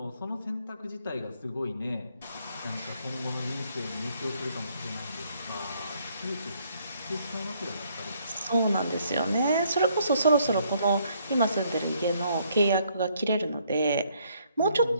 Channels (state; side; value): inverted; both; correlation -0.67